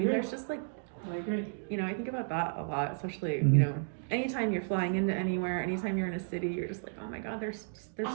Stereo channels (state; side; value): silent; left; digital silence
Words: there's just like. I agree. I think about that a lot, especially, anytime you're flying into anywhere, anytime you're in a city, you're just like, oh my God, there's